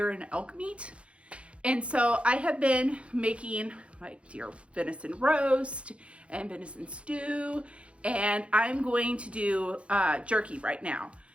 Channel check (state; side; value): late; left; 0.060 ms